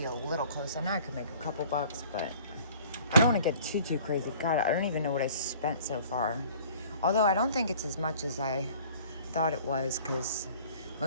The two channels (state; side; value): inverted; both; correlation -0.50